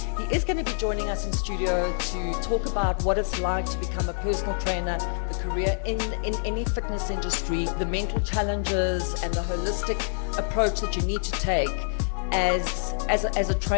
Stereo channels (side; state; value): right; silent; digital silence